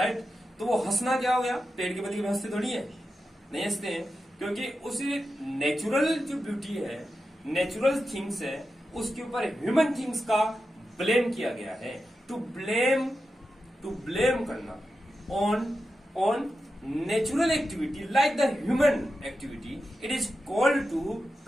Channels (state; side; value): normal; both; correlation 0.90